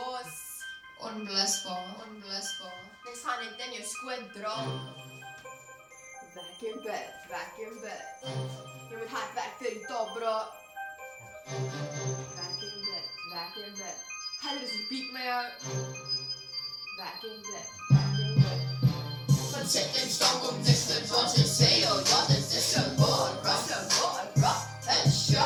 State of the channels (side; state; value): both; identical; correlation 1.00